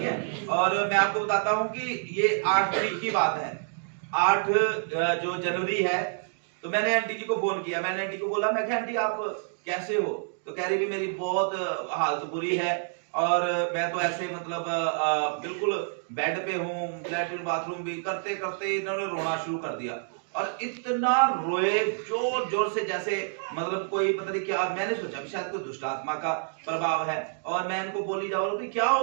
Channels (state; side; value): silent; left; digital silence